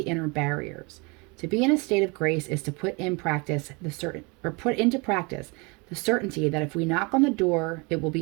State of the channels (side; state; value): left; quieter; 28.9 dB